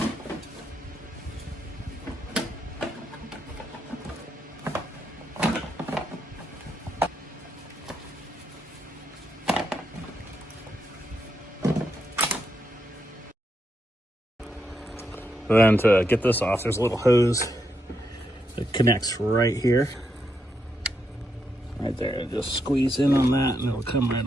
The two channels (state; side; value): normal; both; correlation 0.81